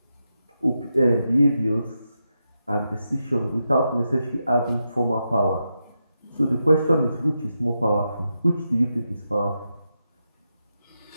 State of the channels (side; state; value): both; inverted; correlation -0.87